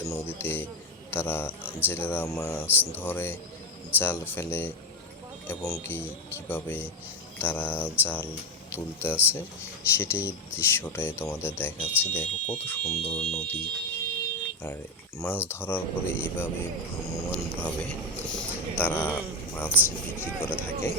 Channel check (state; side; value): normal; both; correlation 0.11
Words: নদীতে তারা জেলেরা মাছ ধরে, জাল ফেলে এবং কিভাবে তারা জাল তুলতে আছে সেটাই দৃশ্যটাই তোমাদের দেখাচ্ছি। দেখো কত সুন্দর নদী, আর মাছ ধরার পরে এইভাবে ভ্রাম্যমাণভাবে তারা মাছ বিক্রি করে থাকে।